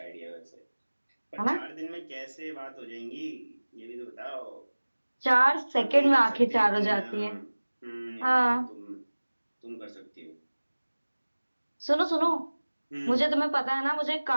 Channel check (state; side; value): inverted; both; correlation -1.00